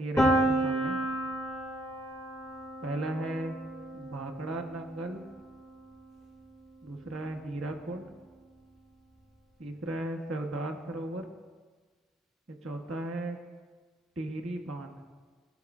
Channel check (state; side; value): normal; both; correlation 0.68